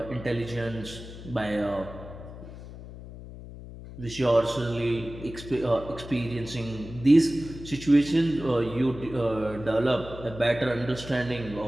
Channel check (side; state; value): left; noise; hum, 13 dB below the sound